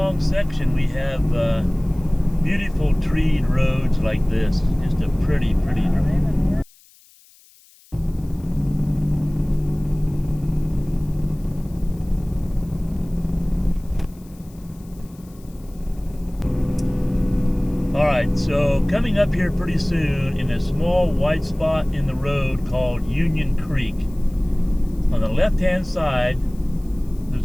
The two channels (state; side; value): noise; left; hiss, 28 dB below the sound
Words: section we have beautiful treed roads like this. Just a pretty drive. Alright, so coming up here pretty soon in a small white spot in the road called Union Creek. On the left hand side